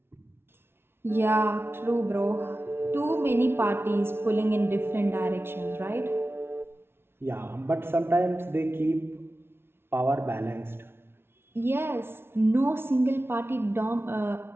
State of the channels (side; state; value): left; late; 0.12 ms